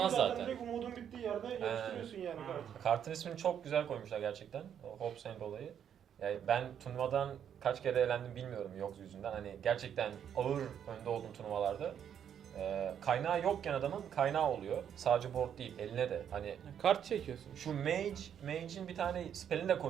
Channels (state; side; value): quieter; left; 8.9 dB